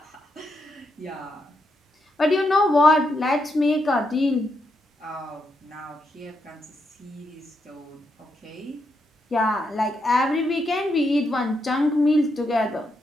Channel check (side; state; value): both; normal; correlation 0.81